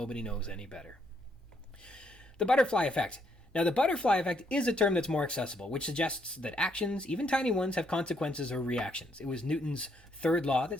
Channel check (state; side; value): normal; both; correlation 0.73